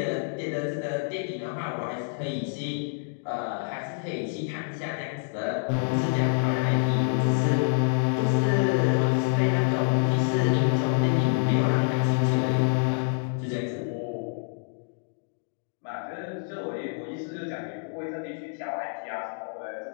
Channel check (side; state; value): right; silent; digital silence